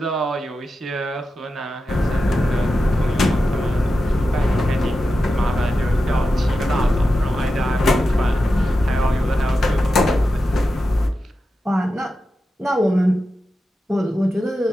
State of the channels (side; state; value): both; normal; correlation 0.91